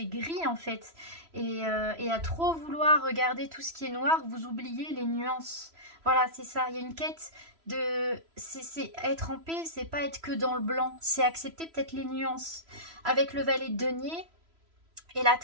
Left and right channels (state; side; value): late; left; 3.0 ms